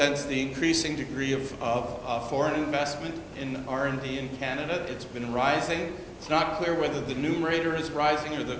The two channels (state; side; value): identical; both; correlation 1.00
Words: the increasing degree of foreign investment in R&D in Canada. It's been rising. It's not clear whether the numerator is rising or